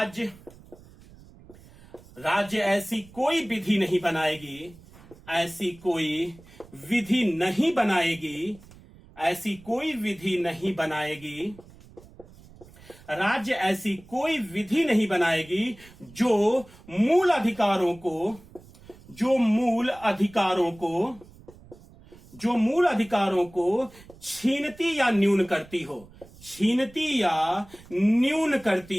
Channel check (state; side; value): noise; right; rumble, 23 dB below the sound